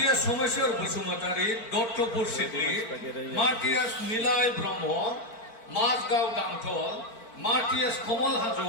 সোমেশ্বর বসুমতারি দত্তপুর সিদ্ধি মার্টিয়াস নীলায় ব্রহ্ম মাঝগাঁও গাংথল মার্টিয়াস কমল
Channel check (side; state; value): right; late; 4.5 ms